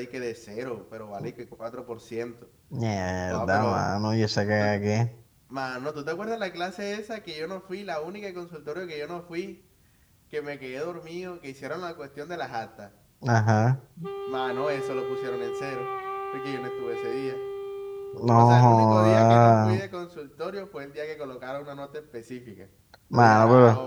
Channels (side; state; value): both; identical; correlation 1.00